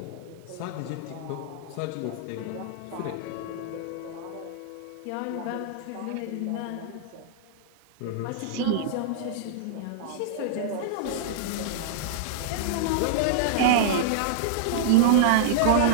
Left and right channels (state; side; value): different; both; correlation -0.01